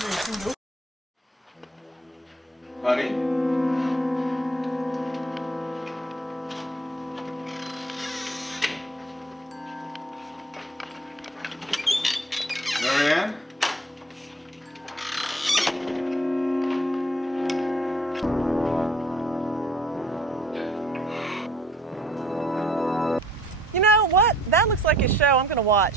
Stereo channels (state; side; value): normal; both; correlation 0.57